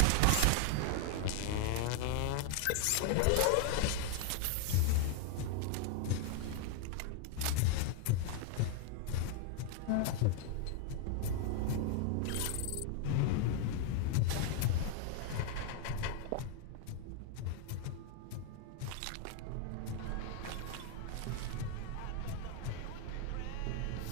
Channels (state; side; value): different; both; correlation 0.00